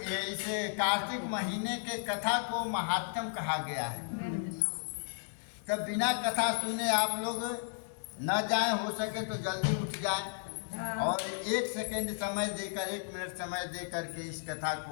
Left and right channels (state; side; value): silent; right; digital silence